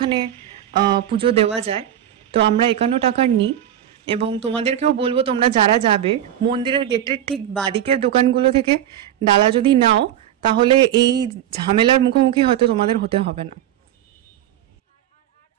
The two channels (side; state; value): left; quieter; 11.3 dB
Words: পুজো দেওয়া যায়। তো আমরা 51 টাকার নিই এবং তোমাদেরকেও বলবো তোমরা যারা যাবে মন্দিরের গেটের ঠিক বাদিকের দোকানগুলো থেকে ডালা যদি নাও তাহলে এই ঝামেলার মুখোমুখি হয়তো তোমাদের হতে হবে না।